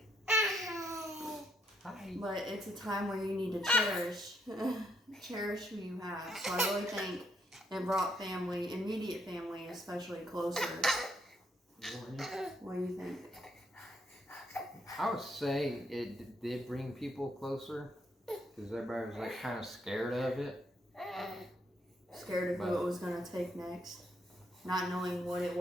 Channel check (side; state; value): both; normal; correlation 0.74